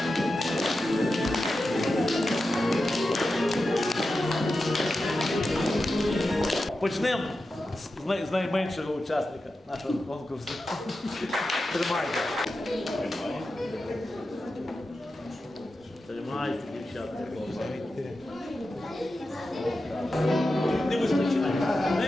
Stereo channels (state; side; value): normal; both; correlation 0.91